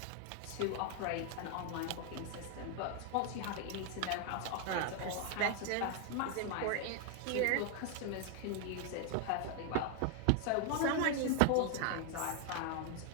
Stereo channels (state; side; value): different; both; correlation 0.00